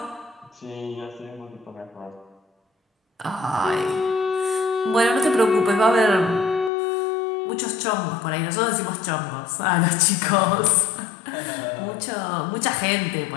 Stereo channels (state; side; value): drops out; right; at 6.7 s